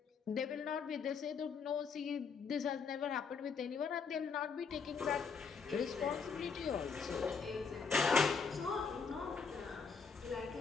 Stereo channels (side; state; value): right; quieter; 5.5 dB